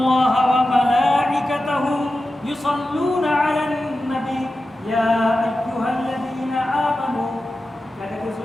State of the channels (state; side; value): normal; both; correlation 0.92